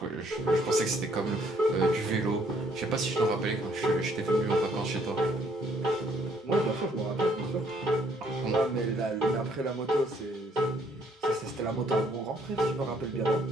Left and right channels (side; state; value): both; normal; correlation 0.66